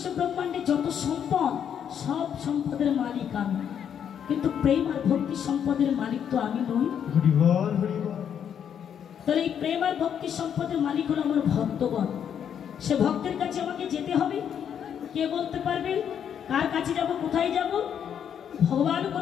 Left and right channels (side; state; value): right; quieter; 8.5 dB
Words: ব্রহ্মাণ্ডে যত সম্পদ, সব সম্পদের মালিক আমি, কিন্তু প্রেম আর ভক্তি সম্পদের মালিক তো আমি নই। তাহলে এই প্রেম আর ভক্তি সম্পদের মালিক হলো আমার ভক্তগণ। সে ভক্তের কাছে আমাকে যেতে হবে। কে বলতে পারবে কার কাছে যাব, কোথায় যাব? ভগবান